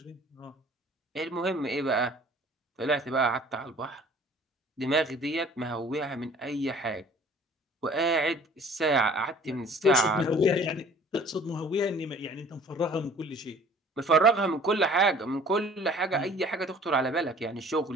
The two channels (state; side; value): normal; both; correlation 0.51